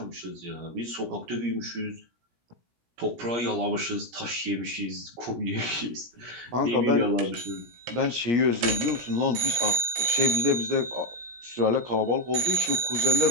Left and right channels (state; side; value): late; left; 17 ms